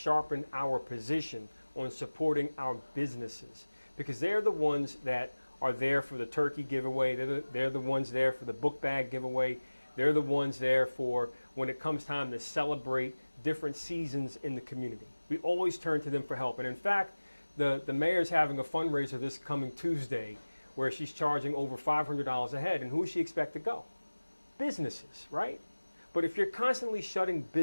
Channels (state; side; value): inverted; both; correlation -1.00